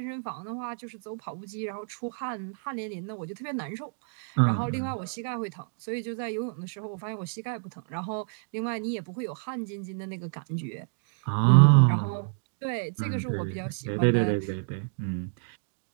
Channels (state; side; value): silent; left; digital silence